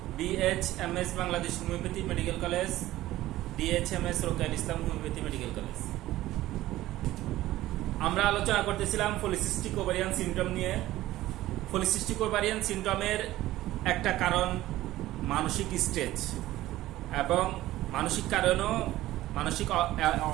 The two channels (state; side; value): quieter; left; 15.7 dB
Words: BHMS Bangladesh homeopathy medical college, DHMS রোকেয়ার ইসলাম হোমিওপ্যাথি মেডিকেল কলেজ। আমরা আলোচনা করতেছিলাম পলিসিস্টিক ওভারিয়ান সিনড্রোম নিয়ে। পলিসিস্টিক ওভারিয়ান সিনড্রোমের একটা কারণ মানসিক স্ট্রেস, এবং মানসিক কারণেও মানসিক